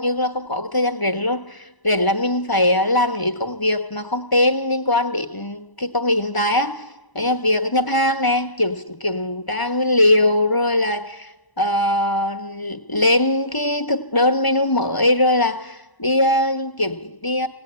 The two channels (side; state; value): right; late; 1.0 ms